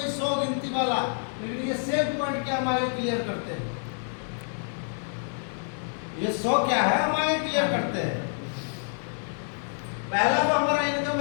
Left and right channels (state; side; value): silent; right; digital silence